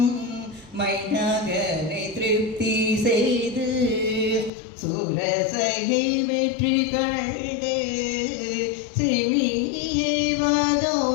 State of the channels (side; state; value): right; drops out; at 4.5 s